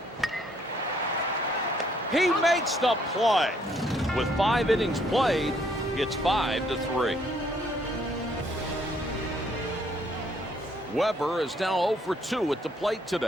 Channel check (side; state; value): both; normal; correlation 0.66